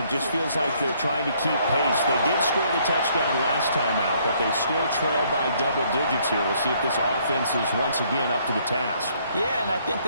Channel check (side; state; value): both; inverted; correlation -0.66